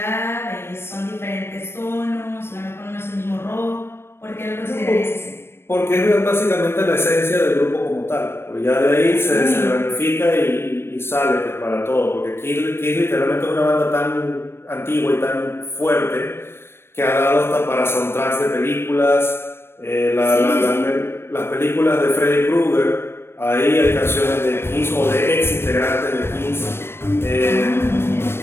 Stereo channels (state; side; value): late; right; 0.12 ms